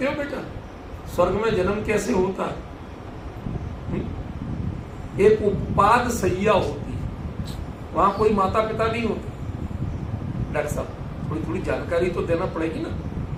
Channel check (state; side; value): identical; both; correlation 1.00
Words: हो बेटा स्वर्ग में जन्म कैसे होता है? एक उपपाद सैया होती है, वहां कोई माता पिता नहीं होते। डॉक्टर साहब थोड़ी थोड़ी जानकारी तो देना पड़ेगी ना।